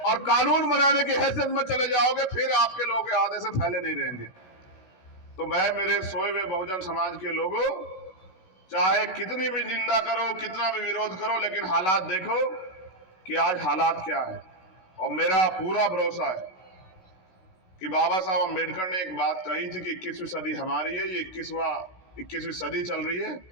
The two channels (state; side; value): late; right; 16 ms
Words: और कानून बनाने की हैसियत में चले जाओगे, फिर आपके लोग आधे से फैले नहीं रहेंगे। तो मैं मेरे सोए हुए बहुजन समाज के लोगों, चाहे कितनी भी निंदा करो, कितना भी विरोध करो, लेकिन हालात देखो कि आज हालात क्या है। और मेरा पूरा भरोसा है कि बाबा साहब अम्बेडकर ने एक बात कही थी कि 21वीं सदी हमारी है, ये 21वीं सदी चल रही है,